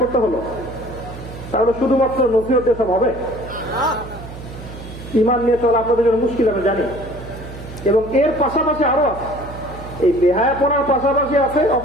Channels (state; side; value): noise; right; hum, 13 dB below the sound